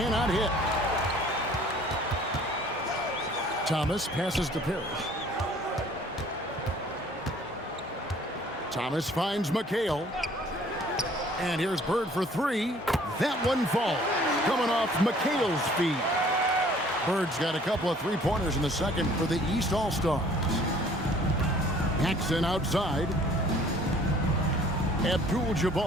hit. Thomas passes to Parish. Thomas finds McHale. And here's Bird for 3. That one falls. Coming off McHale's feed. Bird's got a couple of three-pointers in the second for the East All-Stars. Paxson outside.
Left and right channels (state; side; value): normal; both; correlation 0.55